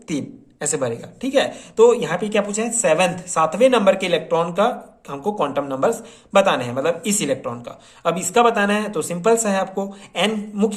3 ऐसे भरेगा, ठीक है। तो यहाँ पे क्या पूछा है, 7वें नंबर के इलेक्ट्रॉन का हमको क्वांटम नंबर्स बताने हैं, मतलब इस इलेक्ट्रॉन का। अब इसका बताना है तो सिंपल सा है आपको, n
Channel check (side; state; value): both; identical; correlation 1.00